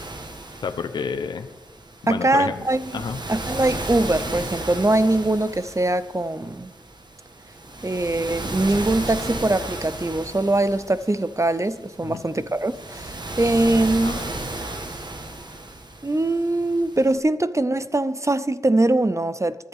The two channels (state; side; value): normal; both; correlation 0.84